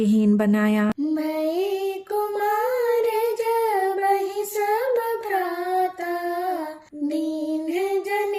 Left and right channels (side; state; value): both; identical; correlation 1.00